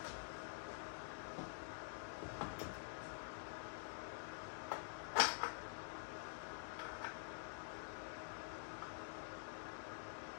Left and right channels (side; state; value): right; silent; digital silence